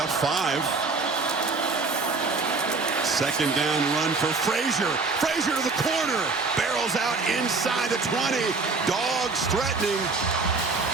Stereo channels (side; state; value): left; quieter; 4.1 dB